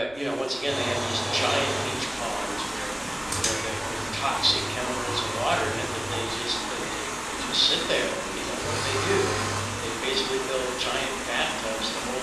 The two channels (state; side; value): noise; left; rumble, 24 dB below the sound